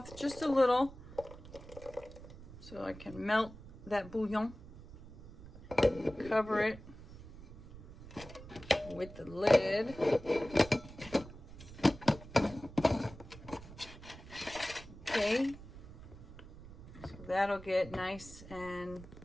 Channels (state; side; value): noise; right; rumble, 16 dB below the sound